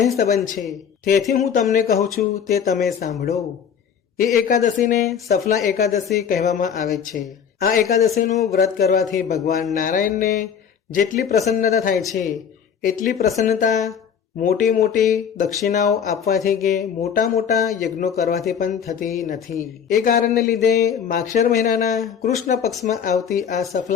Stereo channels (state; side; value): quieter; right; 7.7 dB